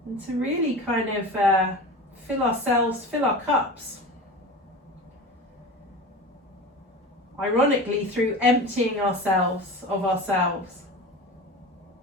and to really kind of fill our cups. Ironically, through emptying ourselves of ourselves.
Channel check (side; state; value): both; normal; correlation 0.32